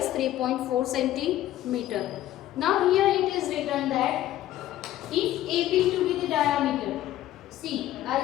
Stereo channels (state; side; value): quieter; right; 13.8 dB